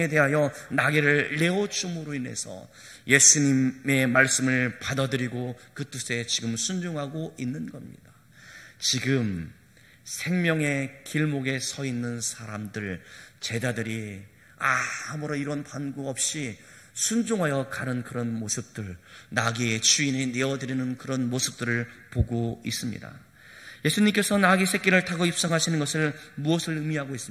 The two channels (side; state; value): both; identical; correlation 1.00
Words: 대하여 나귀를 내어줌으로 인해서 예수님의 말씀을 받아들이고 그 뜻에 지금 순종하고 있는 겁니다. 지금 생명의 길목에 서 있는 사람들, 제자들이 아무런 이런 반구 없이 순종하여 가는 그런 모습들, 나귀의 주인이 내어드리는 그런 모습들을 보고 있습니다. 예수님께서 나귀 새끼를 타고 입성하시는 것을 무엇을 의미하고